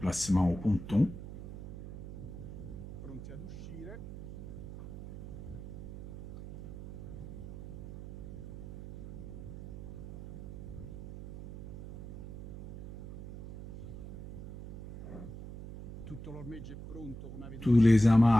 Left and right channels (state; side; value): noise; right; hum, 10 dB below the sound